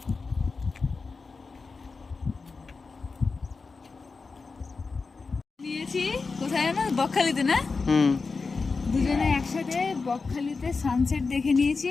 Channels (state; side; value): quieter; right; 4.4 dB